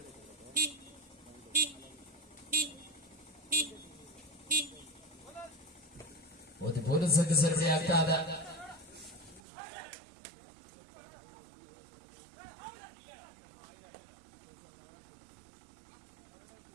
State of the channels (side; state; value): left; drops out; at 9.4 s